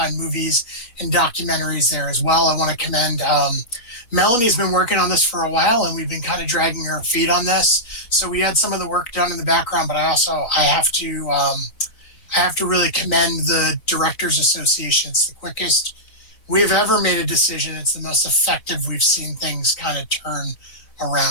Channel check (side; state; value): right; late; 4.1 ms